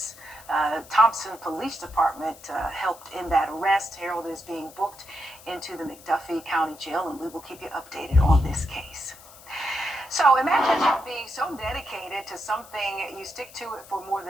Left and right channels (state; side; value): noise; left; hiss, 21 dB below the sound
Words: Thompson Police Department helped in that arrest. Harold is being booked into the McDuffie County Jail, and we will keep you updated on this case. So imagine being so dedicated to something, you stick to it for more